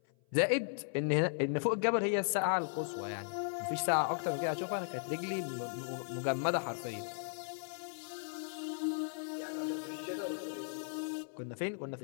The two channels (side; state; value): right; silent; 53 dB below the other